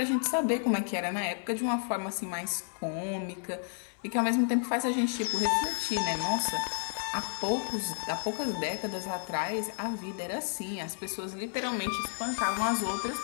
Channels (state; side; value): silent; right; digital silence